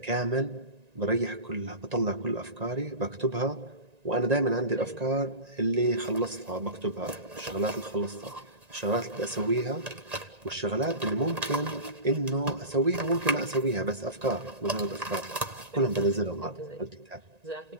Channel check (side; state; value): left; late; 1.9 ms